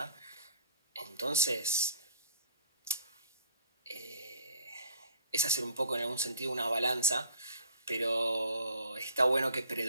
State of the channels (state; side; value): inverted; both; correlation -0.57